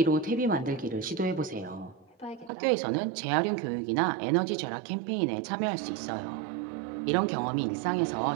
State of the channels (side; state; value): left; drops out; at 2.5 s